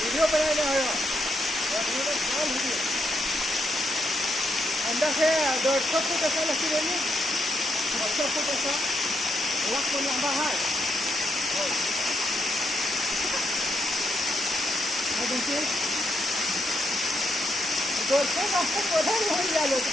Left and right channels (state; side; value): normal; both; correlation 0.79